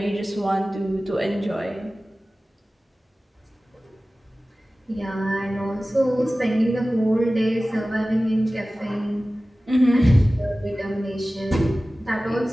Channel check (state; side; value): normal; both; correlation 0.97